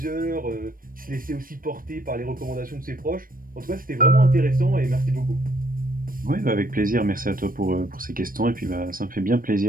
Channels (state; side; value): late; left; 0.41 ms